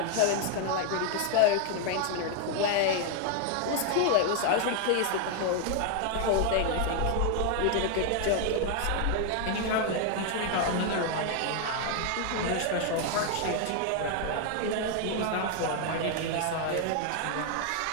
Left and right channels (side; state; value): both; different; correlation 0.00